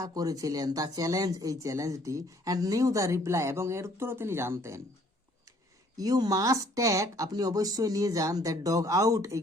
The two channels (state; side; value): normal; both; correlation 0.60